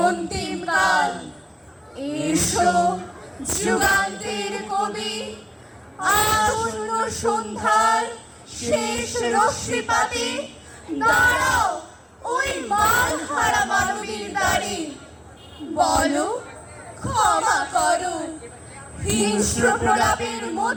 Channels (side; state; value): both; identical; correlation 1.00